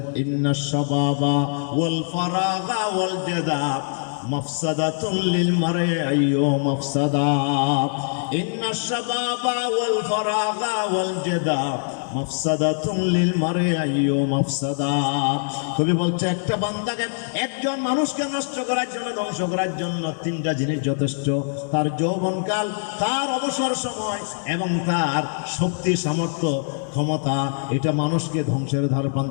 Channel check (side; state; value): right; silent; 63 dB below the other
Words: ইন্নাশ শাবাবা ওয়াল ফারাগা ওয়াল জাদা মাফসাদাতুন লিল মারই আইয়ু মাফসাদা। ইন্নাশ শাবাবা ওয়াল ফারাগা ওয়াল জাদা মাফসাদাতুন লিল মারই আইয়ু মাফসাদা। কবি বলছে একটা বান্দাকে, একজন মানুষকে নষ্ট করার জন্য, ধ্বংস করার জন্য 3টা জিনিস যথেষ্ট। তার যৌবনকাল, তার অবসর সময়, এবং তার শক্তি, সামর্থ্য, ক্ষমতা। এটা মানুষকে ধ্বংসের ধার